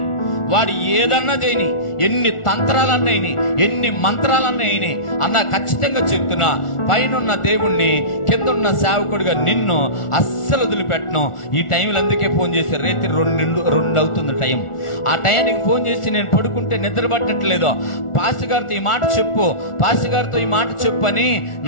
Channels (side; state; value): right; late; 1.4 ms